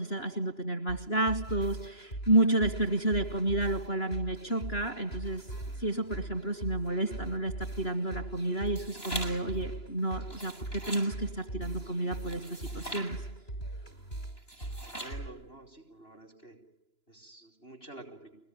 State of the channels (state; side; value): late; right; 2.9 ms